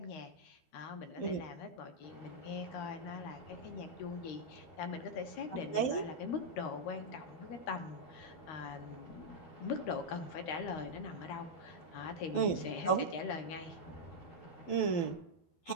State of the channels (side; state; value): right; late; 12 ms